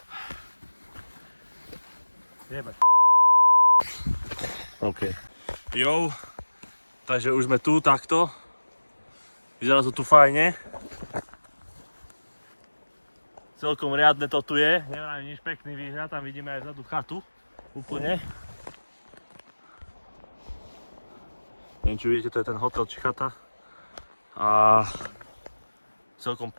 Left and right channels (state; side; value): inverted; both; correlation -1.00